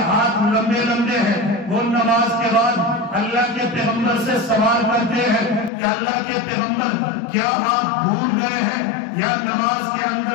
ہاتھ لمبے لمبے ہیں، وہ نماز کے بعد اللہ کے پیغمبر سے سوال کرتے ہیں کہ اللہ کے پیغمبر کیا آپ بھول گئے ہیں یا نماز کے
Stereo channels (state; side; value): drops out; right; at 5.7 s